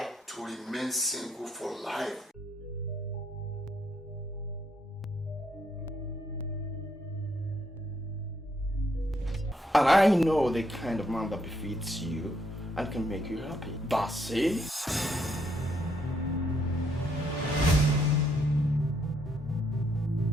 To remain single for life. And I know the kind of man that befits you and can make you happy. That's it.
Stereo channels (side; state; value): both; normal; correlation 0.74